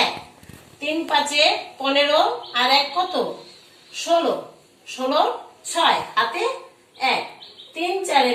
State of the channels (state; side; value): identical; both; correlation 1.00